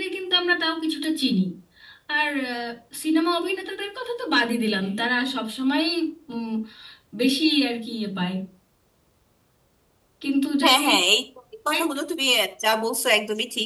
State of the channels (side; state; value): both; identical; correlation 1.00